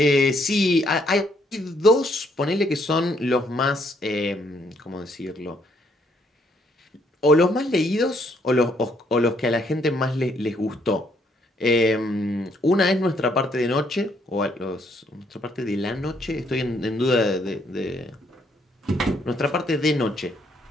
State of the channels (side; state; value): both; normal; correlation 0.70